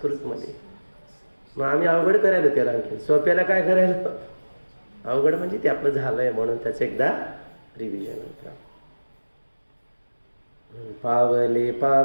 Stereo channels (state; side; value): inverted; both; correlation -1.00